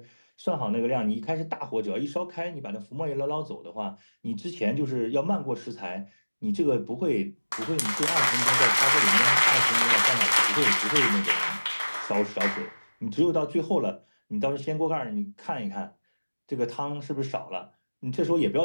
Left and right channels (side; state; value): both; inverted; correlation -1.00